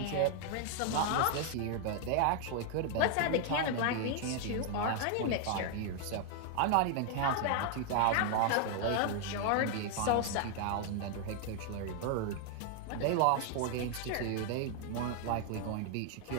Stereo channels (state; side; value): different; both; correlation 0.00